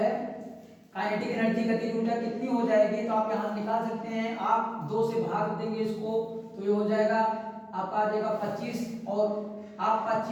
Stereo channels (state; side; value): identical; both; correlation 1.00